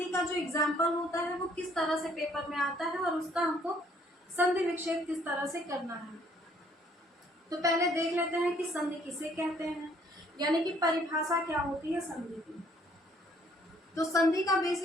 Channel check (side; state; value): both; normal; correlation 0.63